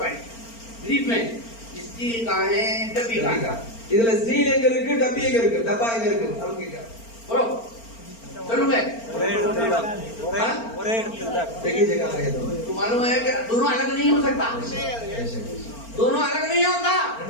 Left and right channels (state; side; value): late; right; 4.4 ms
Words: पॉइंट ब्रीफ में स्टील कहाँ है, डब्बी कहाँ है। இதுல ஸ்டீல் எங்க இருக்கு, டப்பி எங்க இருக்கு, டப்பா எங்க இருக்கு, அவங்க बोलो चलो मैं देखिए जगह है तो तो मालूम है कि दोनों अलग नहीं हो सकता, दोनों अलग नहीं होता,